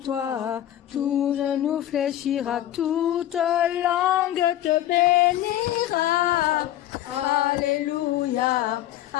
tout genou fléchira, toute langue te bénira. Alléluia,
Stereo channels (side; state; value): right; quieter; 12.9 dB